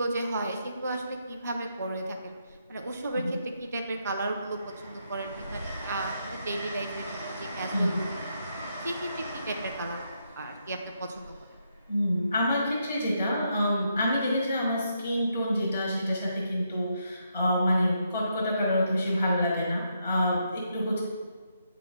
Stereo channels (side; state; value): both; inverted; correlation -0.78